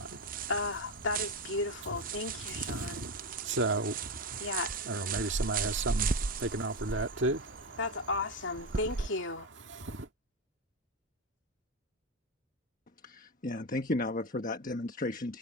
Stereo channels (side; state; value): both; normal; correlation 0.14